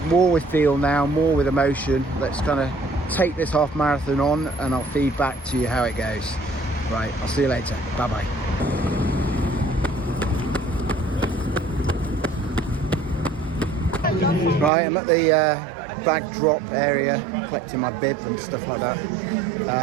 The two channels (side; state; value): left; drops out; at 14.7 s